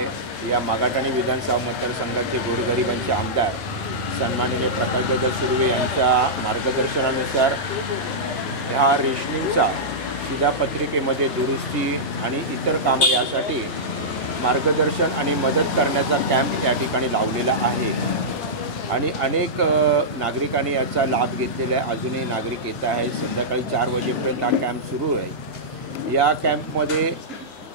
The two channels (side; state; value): both; normal; correlation -0.13